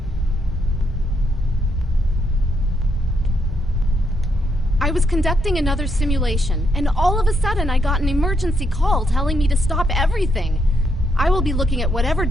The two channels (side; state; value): both; normal; correlation 0.77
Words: I was conducting another simulation, and all of a sudden I got an emergency call telling me to stop everything. I will be looking at whatever